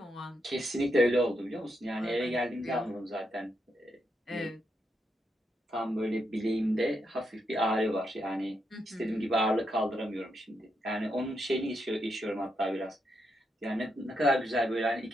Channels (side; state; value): both; normal; correlation 0.82